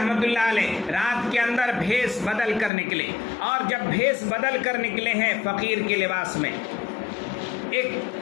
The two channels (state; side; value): drops out; right; at 2.7 s